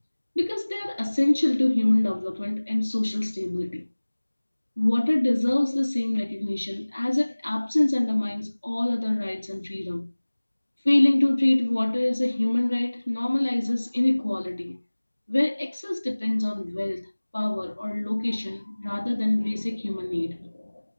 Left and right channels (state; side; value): inverted; both; correlation -1.00